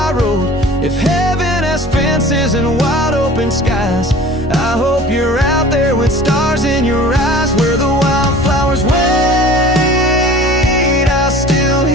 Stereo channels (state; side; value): normal; both; correlation 0.44